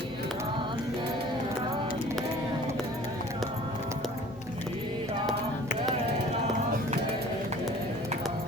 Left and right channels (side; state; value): both; normal; correlation 0.48